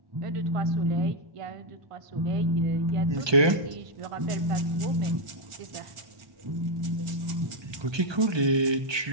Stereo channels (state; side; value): late; left; 1.2 ms